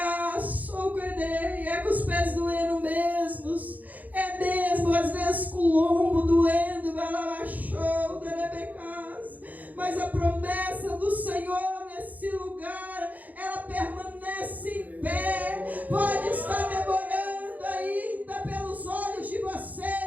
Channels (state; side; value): late; left; 0.079 ms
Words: é com os pés doendo mesmos. É mesmo, às vezes com o lombo doendo. Mas a promessa do Senhor nesse lugar, ela permanece em pé. Pode estar demorando ainda pelos olhos de